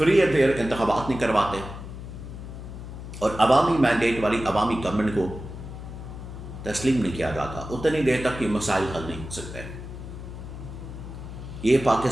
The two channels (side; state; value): left; noise; hum, 10 dB below the sound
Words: اینڈ فیئر انتخابات نہیں کرواتے, اور عوامی مینڈیٹ والی عوامی گورنمنٹ کو تسلیم نہیں کیا جاتا, اتنی دیر تک یہ مسائل حل نہیں ہو سکتے. یہ